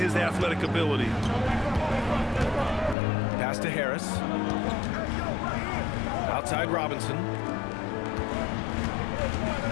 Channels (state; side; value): drops out; right; at 3.0 s